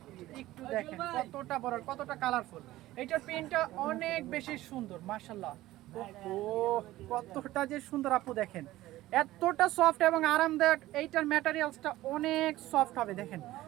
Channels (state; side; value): quieter; left; 16.2 dB